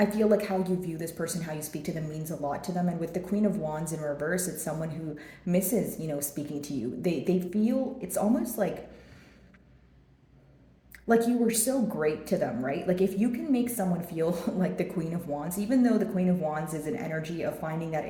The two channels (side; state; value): both; identical; correlation 1.00